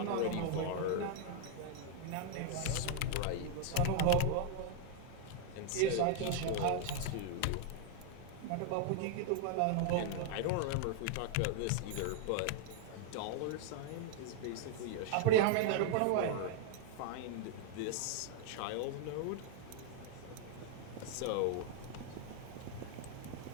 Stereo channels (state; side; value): different; both; correlation 0.00